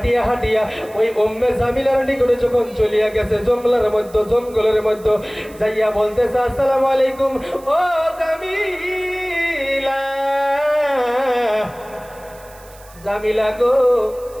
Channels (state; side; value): noise; right; hiss, 24 dB below the sound